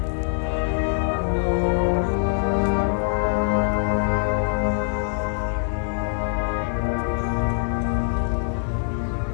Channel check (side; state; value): right; silent; digital silence